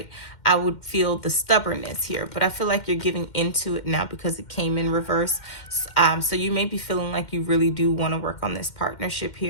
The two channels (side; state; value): right; late; 2.1 ms